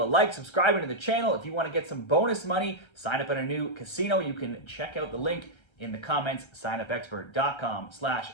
a like, subscribing to the channel. If you want to get some bonus money, sign up at a new casino. You can check out the link in the comments,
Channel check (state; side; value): late; right; 1.3 ms